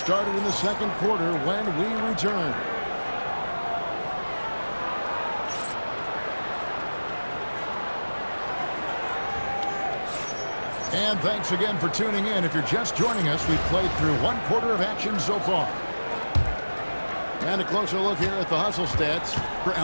in the second quarter when we return. And thanks again for tuning in. If you're just joining us, we've played through one quarter of action so far. And a closer look here at the hustle stats for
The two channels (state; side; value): inverted; both; correlation -1.00